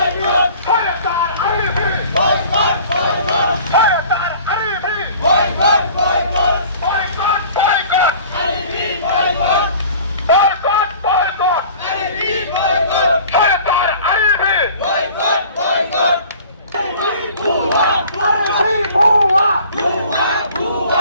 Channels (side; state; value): both; inverted; correlation -0.47